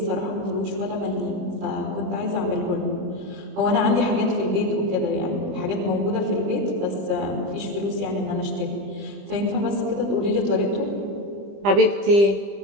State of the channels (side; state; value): left; late; 20 ms